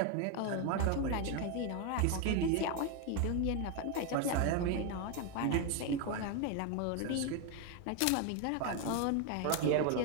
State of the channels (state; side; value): different; both; correlation 0.01